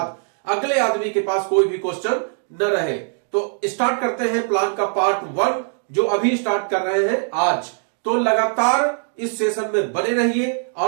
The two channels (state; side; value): silent; left; 65 dB below the other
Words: अगले आदमी के पास कोई भी क्वेश्चन न रहे। तो स्टार्ट करते हैं प्लान का पार्ट 1 जो अभी स्टार्ट कर रहे हैं आज। तो लगातार इस सेशन में बने रहिए